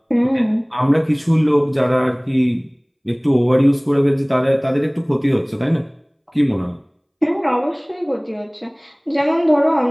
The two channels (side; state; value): both; identical; correlation 1.00